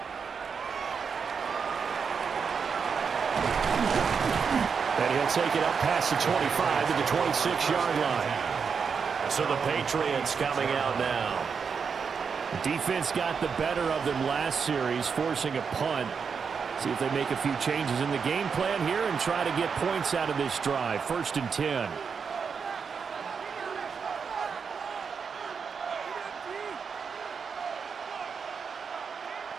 And he'll take it up past the 25 to the 26-yard line. So the Patriots coming out now. The defense got the better of them last series, forcing a punt. See if they make a few changes in the game plan here and try to get points out of this drive. 1st and 10.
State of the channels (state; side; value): quieter; left; 6.0 dB